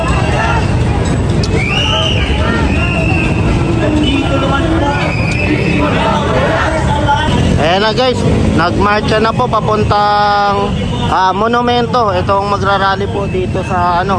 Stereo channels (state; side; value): identical; both; correlation 1.00